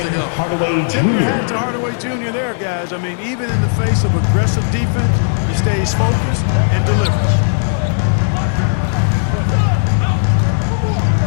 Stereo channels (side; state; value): right; silent; 69 dB below the other